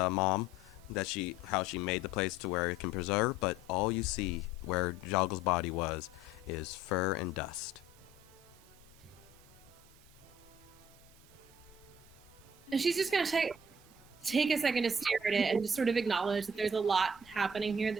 how she made the place to where it can preserve. But all you see where Jogle's body was is fur and dust. And she's just gonna take a second to stare at it and just sort of acknowledge that there's a lot happening here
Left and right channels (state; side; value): normal; both; correlation 0.54